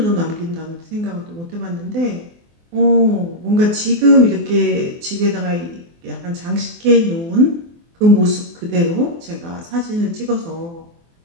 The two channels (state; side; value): late; left; 24 ms